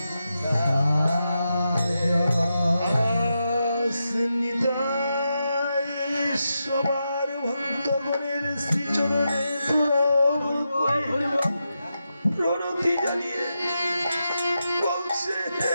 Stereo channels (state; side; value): inverted; both; correlation -0.87